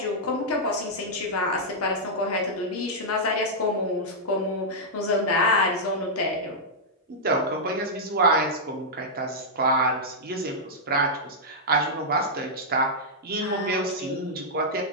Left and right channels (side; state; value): both; normal; correlation -0.08